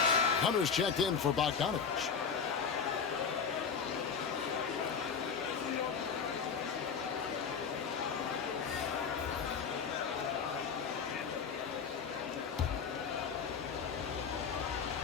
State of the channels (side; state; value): right; quieter; 6.2 dB